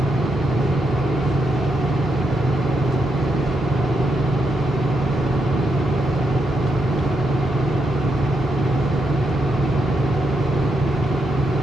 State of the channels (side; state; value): both; normal; correlation 0.81